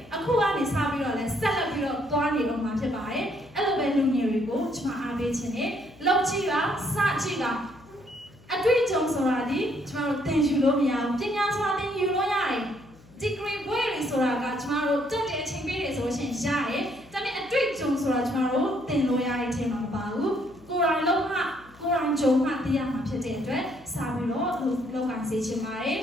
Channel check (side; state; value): left; noise; hum, 25 dB below the sound